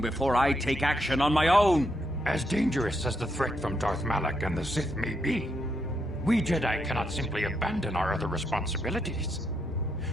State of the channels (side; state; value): both; normal; correlation 0.79